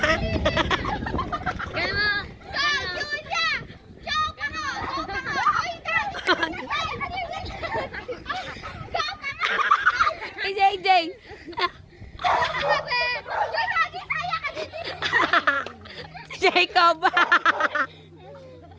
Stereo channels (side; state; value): both; identical; correlation 1.00